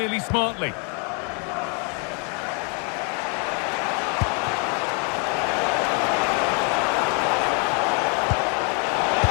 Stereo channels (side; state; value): right; quieter; 37.3 dB